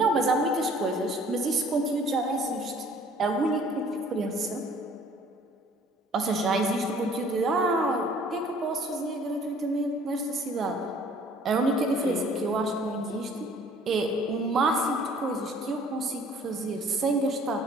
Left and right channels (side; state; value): both; normal; correlation 0.54